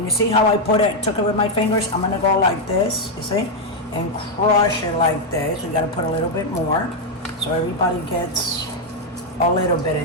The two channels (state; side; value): normal; both; correlation 0.01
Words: you see how I took it with my fingers? I'm gonna go like this, you see? And crush it like this. We gotta put a little bit more, so everybody gets a little bit